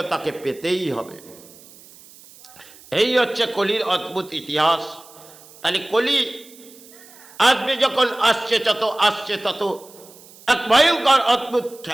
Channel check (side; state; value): right; noise; hiss, 22 dB below the sound